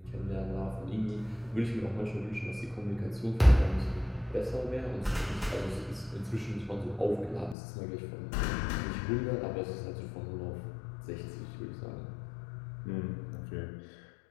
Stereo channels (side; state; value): right; drops out; at 7.6 s